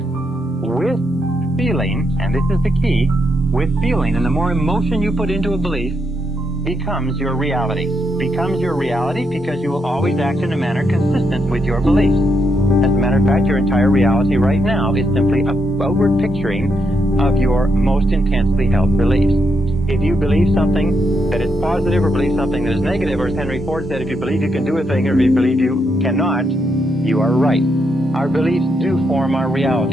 with feeling, and this is the key, with feeling, and the more emotion you put into a belief, becomes your reality. Becomes your reality because you will always act in a manner consistent with your beliefs. As a matter of fact, your entire reality right now is simply a outward picturing of your most intensely held beliefs. If you believe something that is positive or believe something that is negative, or as Henry Ford said, if you believe you can do a thing or if you believe you cannot, you are right. Our beliefs do form our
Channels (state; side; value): normal; both; correlation 0.80